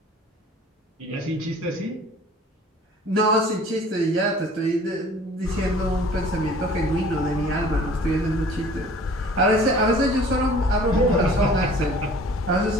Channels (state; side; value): normal; both; correlation 0.49